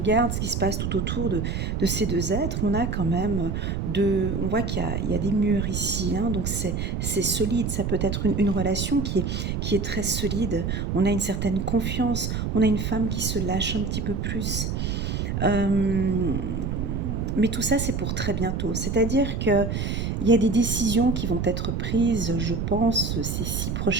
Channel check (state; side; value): noise; right; rumble, 1 dB below the sound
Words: ce qui se passe tout autour de ces 2 êtres, on a quand même on voit qu'il y a des murs ici, hein, donc c'est solide. Ça peut être une relation qui est très solide. On a une certaine confiance, on a une femme qui se lâche un petit peu plus. Mais tout ça, c'est pour très bientôt. C'est-à-dire qu'il y a des décisions qui vont être prises, je pense, ces 6